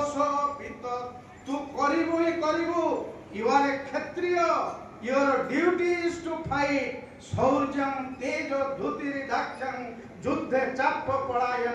तू करिबो ही करिबो you are a Kshatriya your duty is to fight शौर्यं तेज धुतिरि दाक्षं युद्धे चाप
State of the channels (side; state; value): both; identical; correlation 1.00